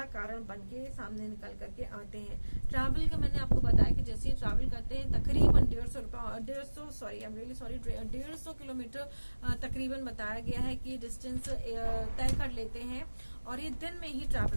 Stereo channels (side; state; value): both; inverted; correlation -1.00